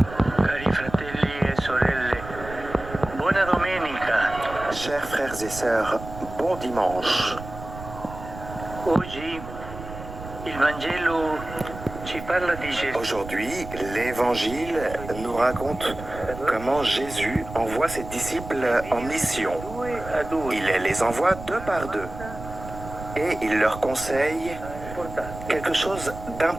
Chers frères et sœurs, bon dimanche. Aujourd'hui, l'Évangile nous raconte comment Jésus envoie ses disciples en mission. Il les envoie deux par deux et il leur conseille quelque chose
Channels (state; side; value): noise; right; rumble, 12 dB below the sound